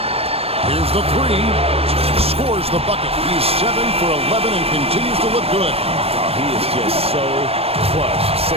Here's the 3. Scores the bucket. He's 7 for 11 and continues to look good. Oh, he is just so clutch,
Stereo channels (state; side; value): late; left; 0.29 ms